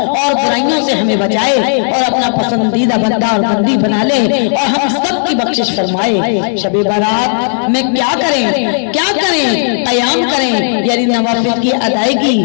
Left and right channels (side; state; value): right; silent; digital silence